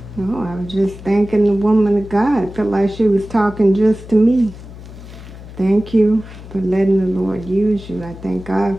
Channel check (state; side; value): noise; left; hum, 15 dB below the sound